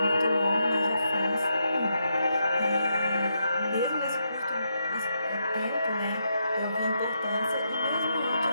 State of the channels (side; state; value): both; inverted; correlation -0.81